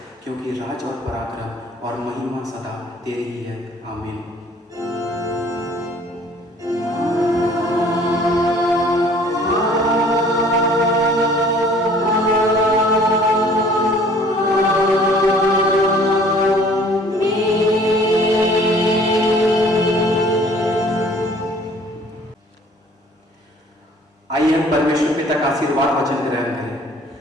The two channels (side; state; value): both; normal; correlation 0.54